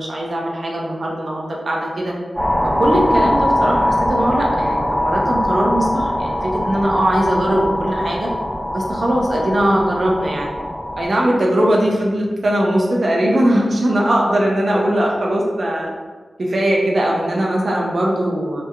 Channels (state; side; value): normal; both; correlation 0.95